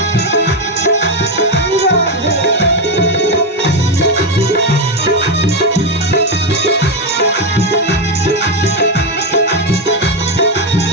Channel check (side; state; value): both; normal; correlation 0.08